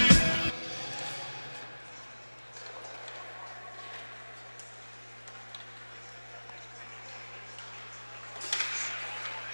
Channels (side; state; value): both; inverted; correlation -1.00